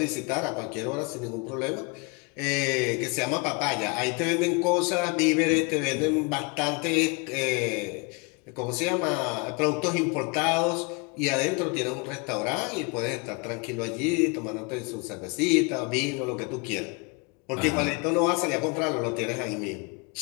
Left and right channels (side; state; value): right; quieter; 29.5 dB